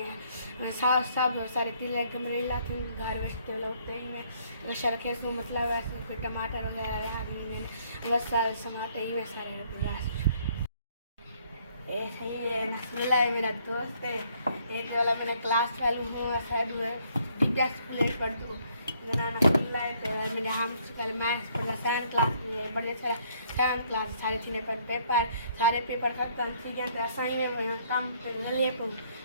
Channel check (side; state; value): both; inverted; correlation -0.65